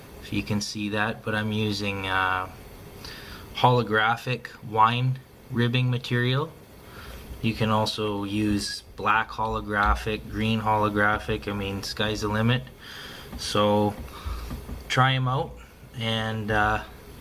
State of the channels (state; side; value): identical; both; correlation 1.00